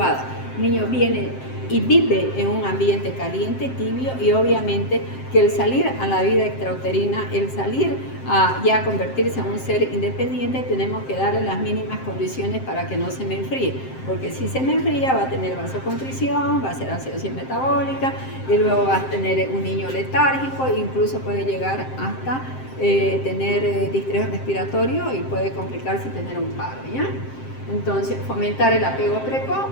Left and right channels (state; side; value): late; right; 7.6 ms